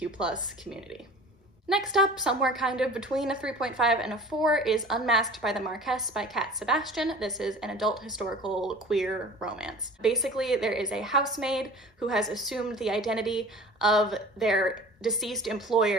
community. Next up, somewhere kind of between a 3.5 and a 4, is Unmasked by the Marquess by Sebastian. This is an adult historical queer romance. Basically, there is a housemaid who has assumed the identity of their deceased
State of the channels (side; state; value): both; normal; correlation 0.42